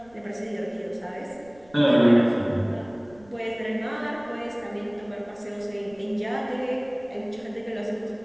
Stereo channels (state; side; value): noise; right; rumble, 27 dB below the sound